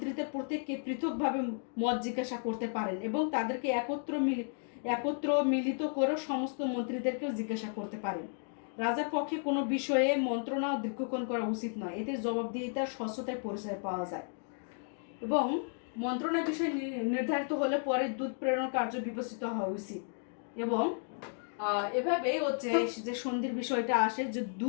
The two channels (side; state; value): right; silent; 55 dB below the other